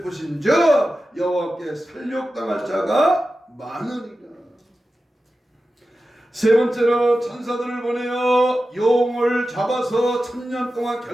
저 여호와께 살육당할 자가 많으니라. 세 번째로 천사들을 보내어 용을 잡아서 천년 동안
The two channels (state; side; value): normal; both; correlation 0.93